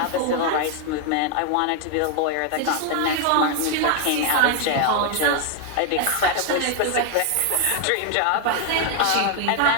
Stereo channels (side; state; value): both; different; correlation 0.00